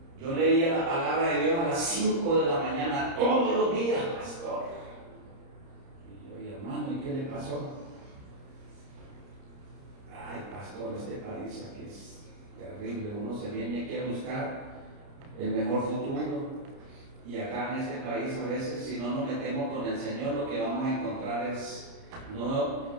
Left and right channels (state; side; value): late; left; 30 ms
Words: Yo leía la palabra de Dios a las 5 de la mañana todos los días, pastor. Y yo, hermano, ¿y qué le pasó? Ay, pastor, este país aquí es terrible. Uno se viene aquí a buscar el mejor futuro. Y acá en este país a veces, si no nos metemos con el Señor, lo que vamos a encontrar es